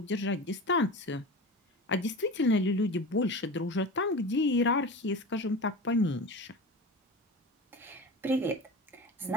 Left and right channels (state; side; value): normal; both; correlation 0.30